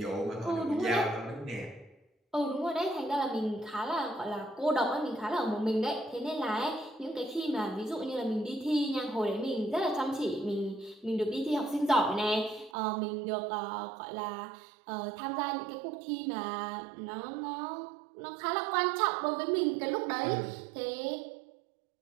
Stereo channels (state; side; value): drops out; left; at 12.8 s